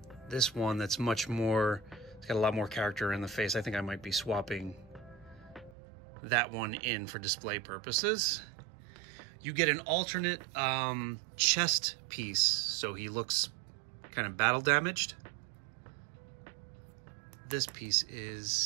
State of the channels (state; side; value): drops out; left; at 5.8 s